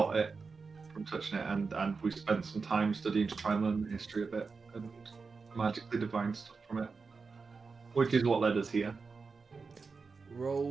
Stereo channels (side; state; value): left; quieter; 4.7 dB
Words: it from touching it, and we spent some time studying to try and learn the history of it and magically divine stuff from it, which is what led us here.